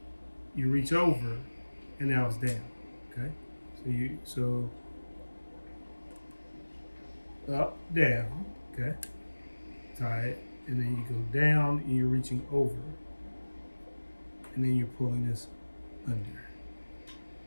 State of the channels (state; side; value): inverted; both; correlation -1.00